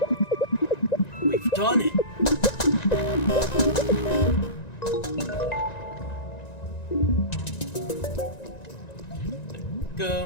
We've done it.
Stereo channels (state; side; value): late; right; 1.9 ms